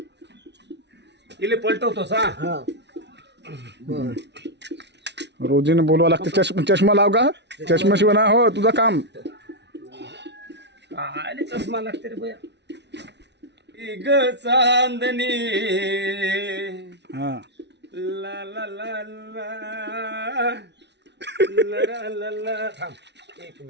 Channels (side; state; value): left; late; 0.50 ms